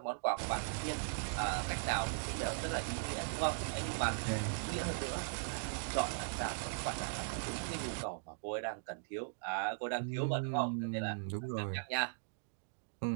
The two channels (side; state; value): left; silent; digital silence